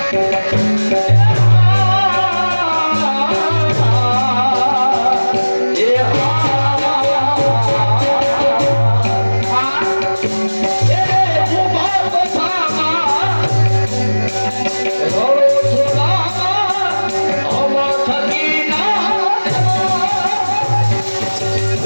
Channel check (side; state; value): both; inverted; correlation -1.00